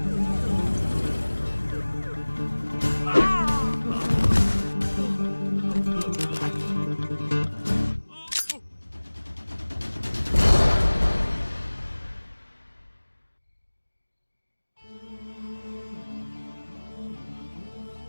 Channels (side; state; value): both; inverted; correlation -1.00